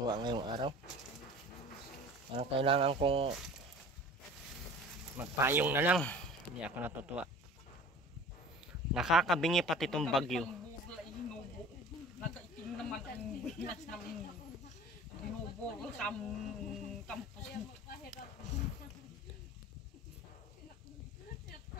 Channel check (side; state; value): both; normal; correlation 0.42